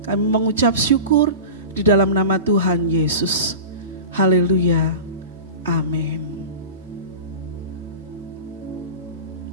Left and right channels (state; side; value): inverted; both; correlation -0.31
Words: Kami mengucap syukur di dalam nama Tuhan Yesus. Haleluya. Amin.